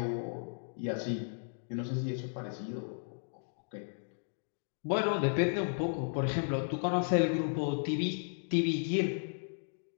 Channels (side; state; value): right; silent; digital silence